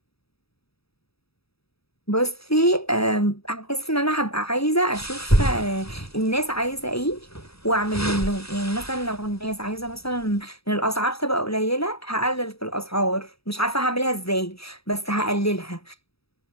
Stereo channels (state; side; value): late; right; 0.77 ms